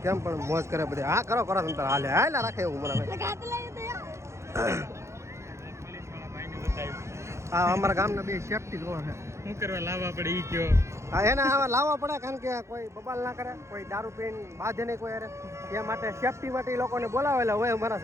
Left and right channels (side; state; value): left; late; 0.14 ms